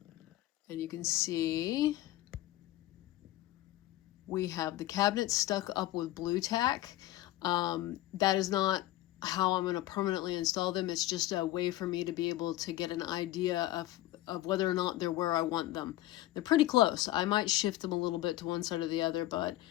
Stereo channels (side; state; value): right; quieter; 15.8 dB